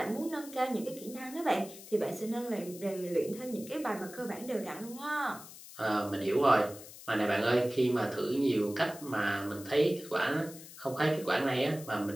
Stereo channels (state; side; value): noise; left; hiss, 16 dB below the sound